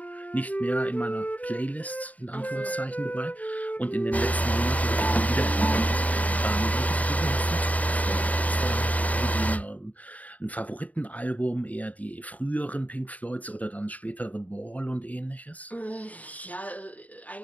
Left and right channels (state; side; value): late; right; 0.072 ms